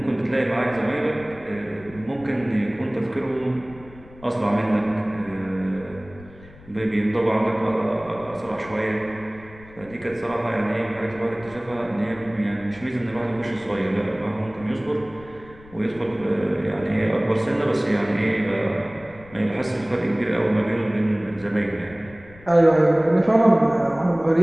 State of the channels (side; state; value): left; noise; rumble, 21 dB below the sound